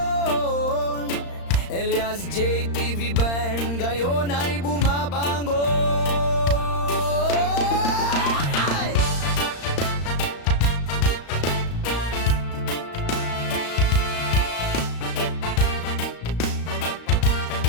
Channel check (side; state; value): right; late; 35 ms